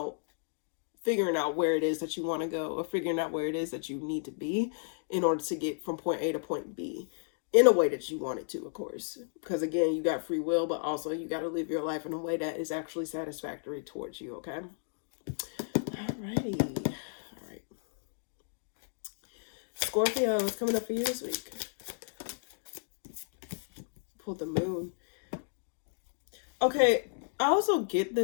figuring out where it is that you want to go, or figuring out where it is that you need to be in order to get from point A to point B in a way that you want it to, of course. Because again, you got free will, but also you got to live your life in a way that is actually satisfactory towards you, okay? Alrighty. All right. Scorpio, what's coming up for you this week? Pull the Moon. Okay, I also get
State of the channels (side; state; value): right; silent; digital silence